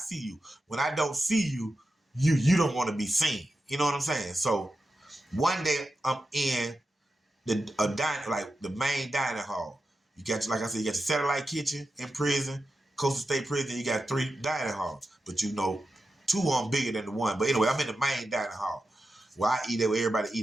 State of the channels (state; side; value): normal; both; correlation 0.90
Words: you. When I don't see you, you don't want to be seen. You know what I'm saying? So one day I'm in the main dining hall. You got, like I said, you got your satellite kitchen in prison, Coastal State Prison. You got 3 dining halls. But Two of them bigger than the one. But anyway, I'm in the main dining hall where I eat at, where everybody